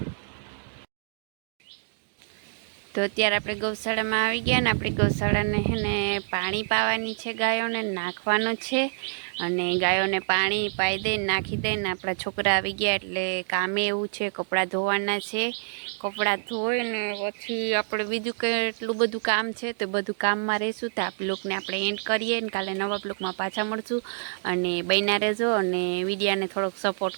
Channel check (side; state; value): left; silent; digital silence